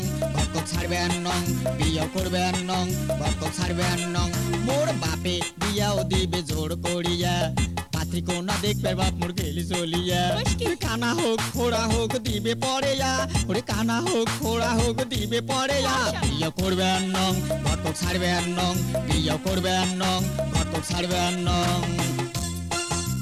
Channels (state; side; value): identical; both; correlation 1.00